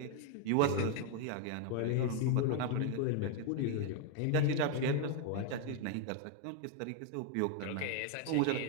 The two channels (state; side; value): different; both; correlation 0.00